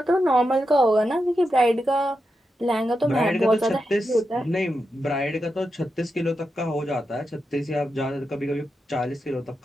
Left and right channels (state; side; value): normal; both; correlation 0.88